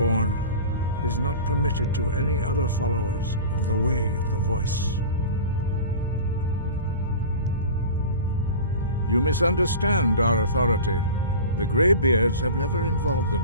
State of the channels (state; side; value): inverted; both; correlation -0.34